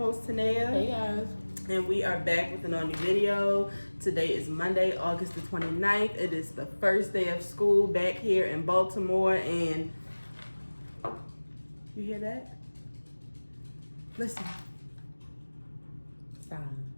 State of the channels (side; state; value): both; inverted; correlation -1.00